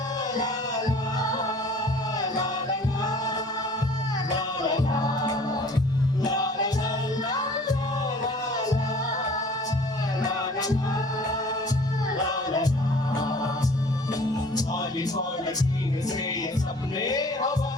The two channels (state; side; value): normal; both; correlation 0.50